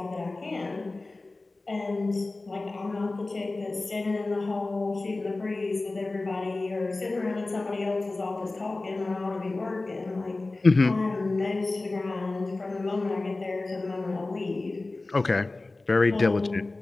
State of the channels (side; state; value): right; quieter; 3.2 dB